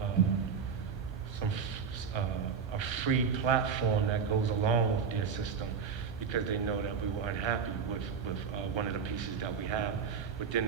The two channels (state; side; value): quieter; left; 6.3 dB